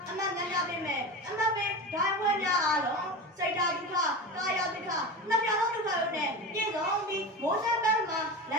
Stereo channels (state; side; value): normal; both; correlation 0.26